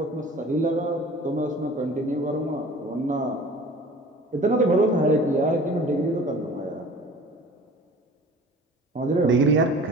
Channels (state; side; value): normal; both; correlation 0.44